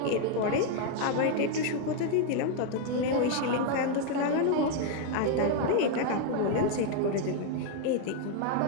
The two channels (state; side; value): different; both; correlation 0.00